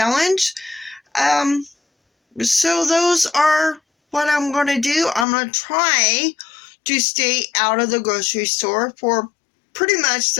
So those are what I'm going to do. I'm going to try to stay out of the grocery store for pretty much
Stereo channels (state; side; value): drops out; right; at 5.2 s